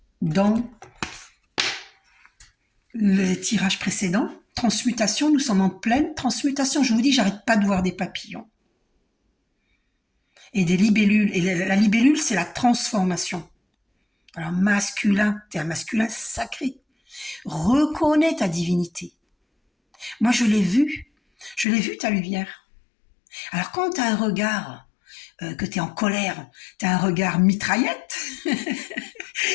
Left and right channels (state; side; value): drops out; right; at 21.7 s